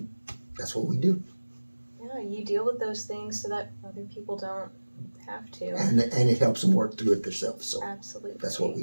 that's what we do. Yeah, you deal with those things so that other people don't have to. And it helps them work through it themselves. So Absolutely. that's what we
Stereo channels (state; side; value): inverted; both; correlation -1.00